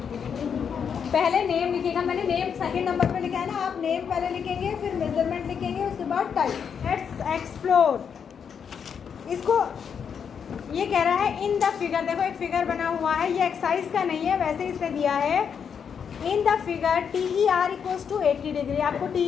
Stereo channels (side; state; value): right; quieter; 7.1 dB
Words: पहले नेम लिखिएगा। मैंने नेम सेकंड नंबर पे लिखा है ना, आप नेम पहले लिखेंगे, फिर मेजरमेंट लिखेंगे, उसके बाद टाइप। Let's explore. इसको ये कह रहा है इन द फिगर, देखो एक फिगर बना हुआ है, ये एक्सरसाइज का नहीं है, वैसे इसने दिया है। In the figure TER equals to 80 degree. आपको